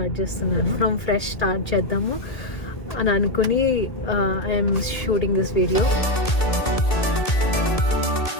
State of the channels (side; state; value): right; late; 1.7 ms